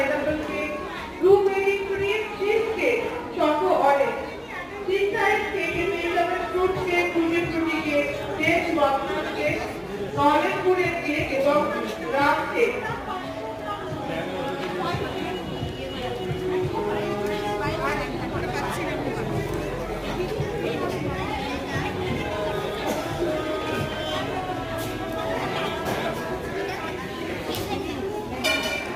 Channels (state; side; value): identical; both; correlation 1.00